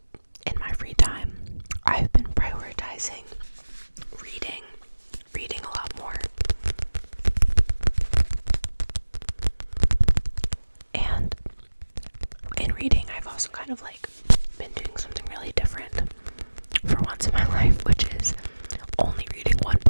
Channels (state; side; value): inverted; both; correlation -1.00